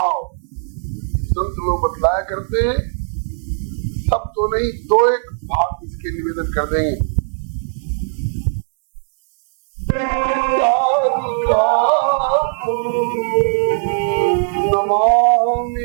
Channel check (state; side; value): silent; left; digital silence